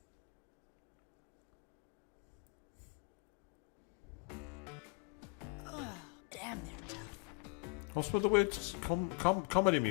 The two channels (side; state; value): right; quieter; 28.5 dB